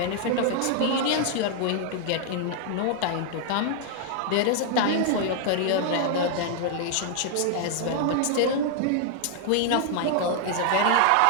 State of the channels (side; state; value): both; different; correlation 0.00